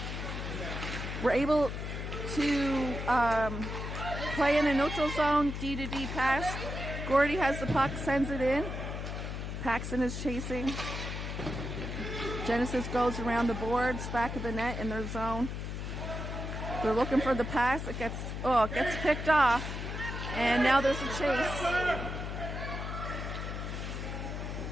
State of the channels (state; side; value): noise; left; hum, 5 dB below the sound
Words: We're able to play in a neutral zone, D to D pass. Gordy has the puck, sends it in. Paxton is chasing. Genesis goes around the boards, back of the net in their zone. They're looking for the pass. It gets picked off. And now there's a chase.